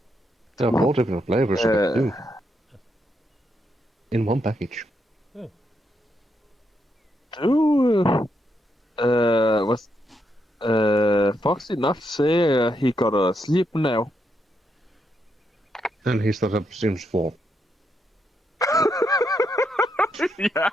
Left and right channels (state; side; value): normal; both; correlation 0.80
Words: different flavors of it too. In one package. Was Foxy not say he got a sleep now? And he started up Sims 4. Yeah.